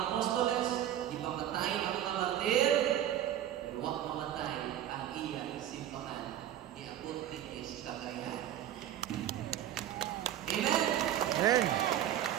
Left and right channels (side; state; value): left; quieter; 11.5 dB